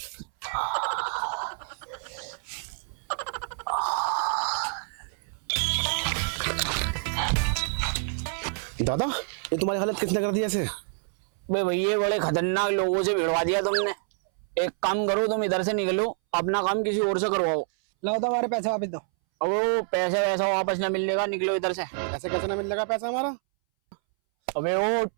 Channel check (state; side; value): silent; left; 60 dB below the other